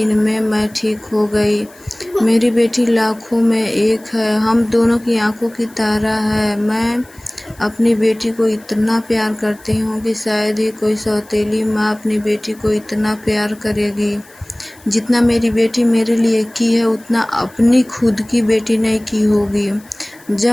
में मैं ठीक हो गई। मेरी बेटी लाखों में एक है। हम दोनों की आंखों की तारा है। मैं अपनी बेटी को इतना प्यार करती हूँ कि शायद ही कोई सौतेली माँ अपनी बेटी को इतना प्यार करेगी जितना मेरी बेटी मेरे लिए की है, उतना अपनी खुद की बेटी ने की होगी।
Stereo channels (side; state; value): left; noise; hiss, 26 dB below the sound